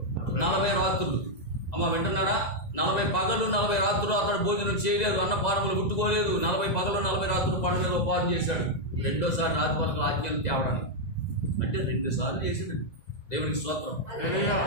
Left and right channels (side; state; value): right; late; 2.0 ms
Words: 40 రాత్రులు. అమ్మ వింటున్నారా? 40 పగళ్ళు 40 రాత్రులు అతడు భోజనం చేయలేదు, అన్నపానములు ముట్టుకోలేదు. 40 పగళ్ళు 40 రాత్రులు పండు మీద ఉపాధి చేశాడు. రెండోసారి రాత్రి వరకు ఆజ్ఞలు తేవడానికి. అంటే 2 సార్లు చేసాడు. దేవునికి స్తోత్రం.